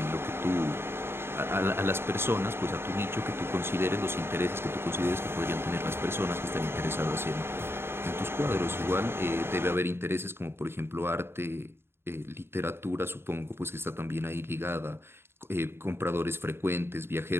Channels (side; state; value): left; late; 0.11 ms